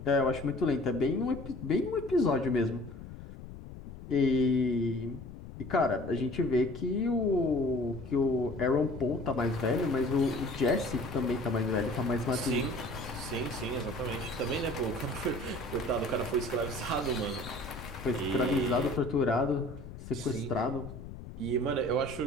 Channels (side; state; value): left; noise; rumble, 13 dB below the sound